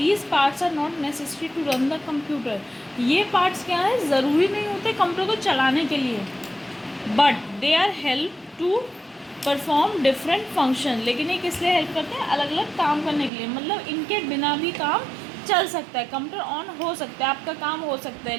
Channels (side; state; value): left; drops out; at 13.3 s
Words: parts are not necessary to run the computer. ये पार्ट्स क्या है, ज़रूरी नहीं होते कंप्यूटर को चलाने के लिए, but they are help to perform different function. लेकिन ये किस लिए हेल्प करते हैं? अलग अलग काम करने के लिए। मतलब इनके बिना भी काम चल सकता है, कंप्यूटर ऑन हो सकता है, आपका काम हो सकता है।